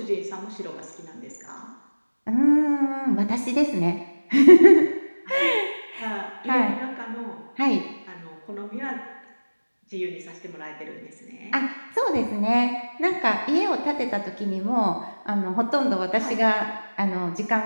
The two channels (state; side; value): inverted; both; correlation -1.00